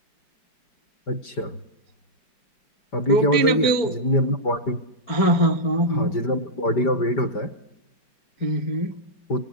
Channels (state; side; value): late; right; 5.1 ms